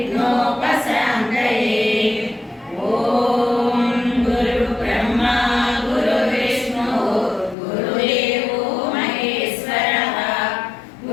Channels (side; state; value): right; drops out; at 7.6 s